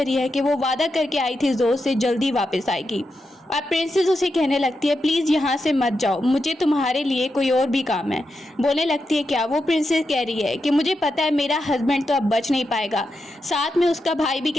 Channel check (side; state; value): both; normal; correlation 0.87